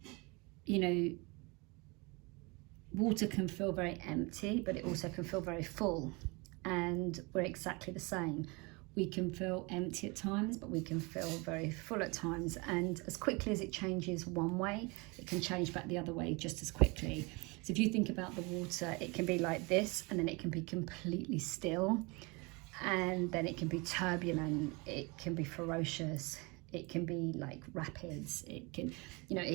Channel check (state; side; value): quieter; left; 27.5 dB